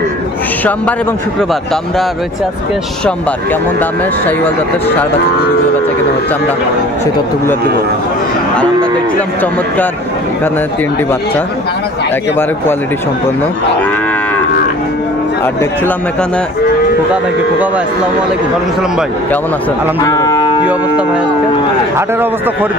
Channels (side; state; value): both; normal; correlation 0.47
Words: সোমবার এবং শুক্রবার। তো আমরা রয়েছে আজকে সোমবার। কেমন দামে শাহিওয়াল জাতের ষাঁড় বাচ্চা গরুগুলো বেচা কেনা হচ্ছে আমরা সেই তথ্যগুলো দেবো। আর আমরা দেখছিলাম চমৎকার এখানে 3টি বাচ্চা, একেবারে কোয়ালিটি সম্পন্ন। আর দেখছিলাম এখানে খোকা ভাইকে। খোকা ভাই আসসালামু আলাইকুম। ওয়ালাইকুম সালাম ভাই, কেমন আছেন? আলহামদুলিল্লাহ। কি অবস্থা ভাই আজকে? হাটের অবস্থা